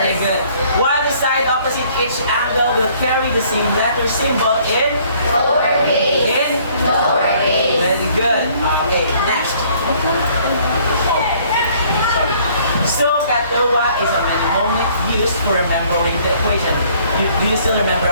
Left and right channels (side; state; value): both; inverted; correlation -0.60